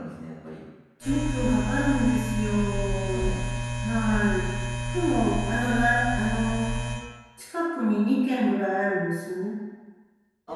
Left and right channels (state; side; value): identical; both; correlation 1.00